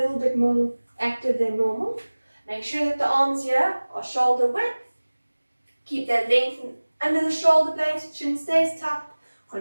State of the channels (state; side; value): inverted; both; correlation -1.00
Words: bit more active than normal. Make sure that the arms here are shoulder width. Keep that length under the shoulder blades, chin stays tucked.